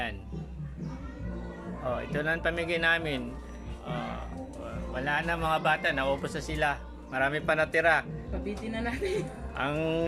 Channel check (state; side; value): identical; both; correlation 1.00